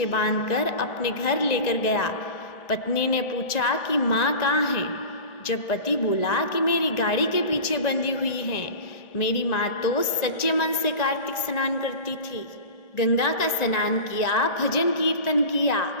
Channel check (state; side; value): late; right; 1.4 ms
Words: बांधकर अपने घर लेकर गया, पत्नी ने पूछा कि माँ कहाँ है? जब पति बोला कि मेरी गाड़ी के पीछे बंधी हुई है, मेरी माँ तो सच्चे मन से कार्तिक स्नान करती थी, गंगा का स्नान किया, भजन कीर्तन किया,